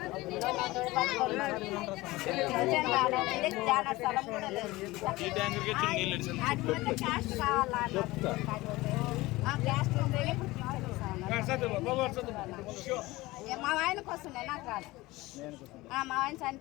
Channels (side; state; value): right; quieter; 19.9 dB